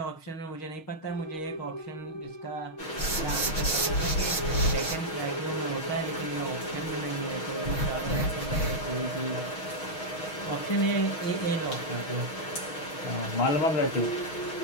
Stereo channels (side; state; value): right; late; 6.3 ms